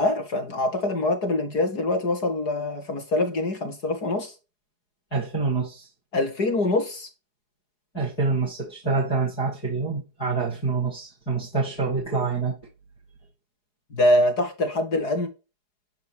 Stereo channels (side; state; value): right; late; 4.8 ms